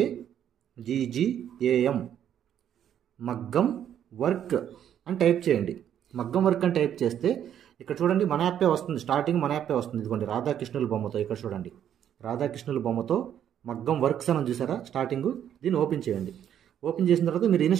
మగ్గం వర్క్ అని టైప్ చేయండి. మగ్గం వర్క్ అని టైప్ చేస్తే ఇక్కడ చూడండి మన యాప్పే వస్తుంది, స్టార్టింగ్ మన యాప్పే వస్తుంది. ఇదిగోండి రాధాకృష్ణుల బొమ్మతో, ఇక్కడ చూడండి రాధాకృష్ణుల బొమ్మతో మగ్గం వర్క్స్ అని చూసారా స్టార్టింగ్. దీన్ని ఓపెన్ చేయండి. ఓపెన్ చేసిన తర్వాత మీరు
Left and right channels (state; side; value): quieter; left; 9.8 dB